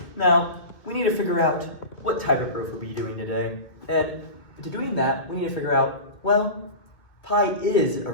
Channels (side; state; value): right; late; 2.4 ms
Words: Now, we need to figure out what type of proof we'll be doing today. And to doing that, we need to figure out, well, pi is